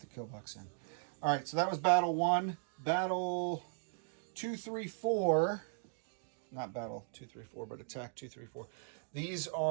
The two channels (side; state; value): left; silent; digital silence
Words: kill box in. All right, so that was battle 1. Battle 2, 3, 4. Not battle 2, 3, 4, but attack 2, 3, 4. These